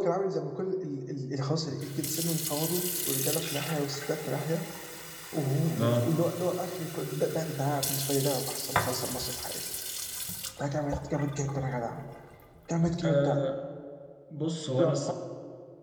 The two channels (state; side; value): identical; both; correlation 1.00